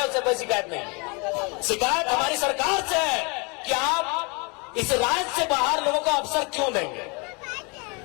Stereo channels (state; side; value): quieter; right; 31.0 dB